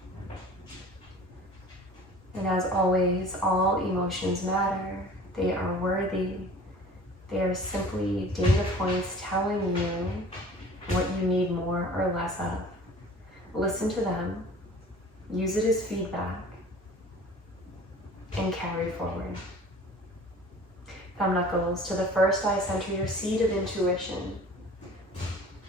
And as always, all emotions matter. They are worthy. They are simply data points telling you what you need more or less of. Listen to them, use it as feedback, and carry forward. Thumb knuckles to the first eye center, your seat of intuition.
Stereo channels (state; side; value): normal; both; correlation 0.45